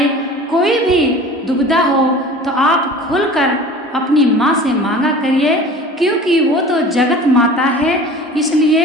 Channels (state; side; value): normal; both; correlation 0.41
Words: कोई भी दुविधा हो, तो आप खुलकर अपनी माँ से मांगा करिए, क्योंकि वो तो जगत माता है,